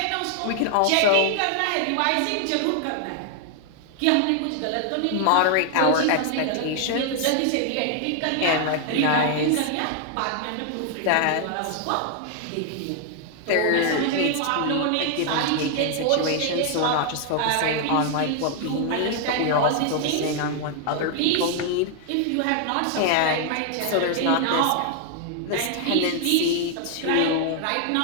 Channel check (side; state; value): both; different; correlation 0.00